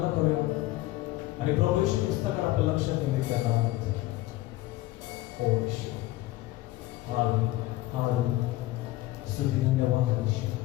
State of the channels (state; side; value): quieter; right; 17.1 dB